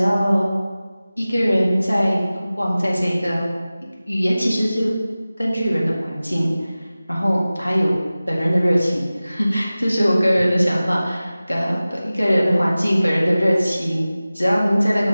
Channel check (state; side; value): inverted; both; correlation -0.97